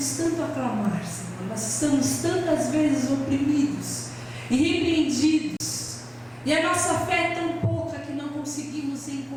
tanto a clamar, Senhor, nós estamos tantas vezes oprimidos e repreendidos, e a nossa fé é tão pouca que não conseguimos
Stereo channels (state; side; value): identical; both; correlation 1.00